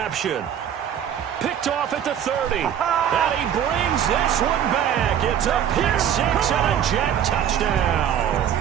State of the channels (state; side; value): quieter; left; 9.4 dB